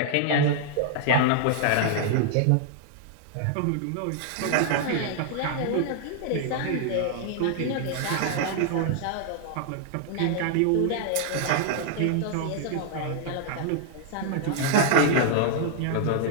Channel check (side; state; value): both; different; correlation -0.01